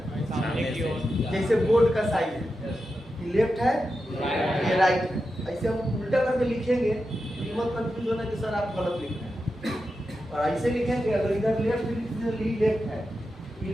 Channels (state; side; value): normal; both; correlation 0.89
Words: जैसे बोर्ड का साइज है, ये लेफ्ट है, ये राइट है। ऐसे हम उल्टा करके लिखेंगे तो मत कंफ्यूज होना कि सर आप गलत लिख रहे हैं। और ऐसे लिखेंगे, अगर इधर लेफ्ट लेफ्ट है, ये